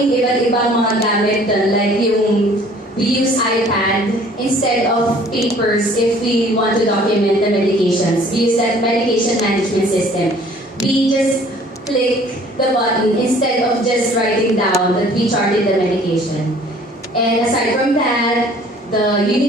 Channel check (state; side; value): normal; both; correlation 0.54